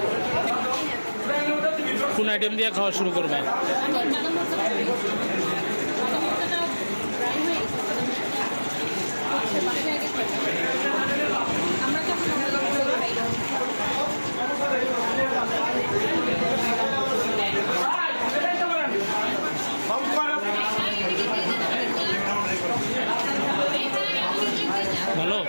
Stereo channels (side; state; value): both; inverted; correlation -1.00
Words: কোন আইটেম দিয়ে খাওয়া শুরু করবে? ভালো।